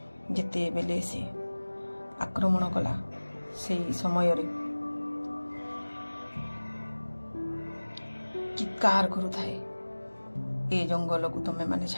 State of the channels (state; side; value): inverted; both; correlation -1.00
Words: जिते बेले से आक्रमण कला से समय रे चित्कार करुथाए ए जंगल को तमे माने